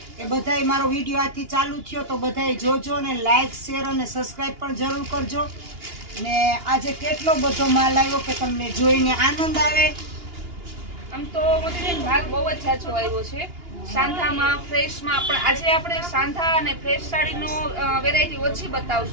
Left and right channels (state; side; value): late; left; 2.8 ms